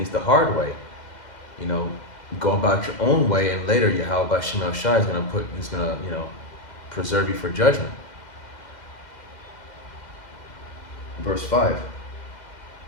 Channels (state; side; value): late; right; 2.0 ms